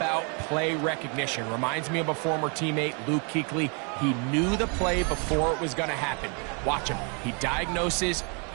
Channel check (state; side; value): quieter; left; 36.2 dB